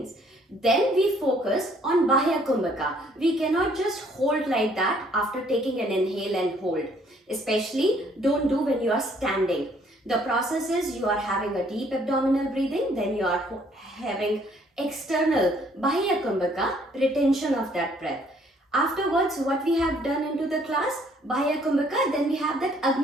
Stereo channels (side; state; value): both; normal; correlation 0.63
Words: Then we focus on bahya kumbhaka. We cannot just hold like that after taking an inhale and hold. Especially don't do when you are standing. The process is you are having a deep abdominal breathing, then you are having external bahya kumbhaka, retention of that breath. Afterwards, what we have done into the class, bahya kumbhaka, then we have that